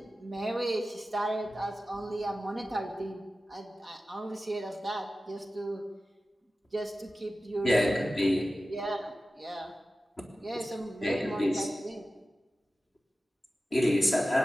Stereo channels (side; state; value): both; normal; correlation 0.95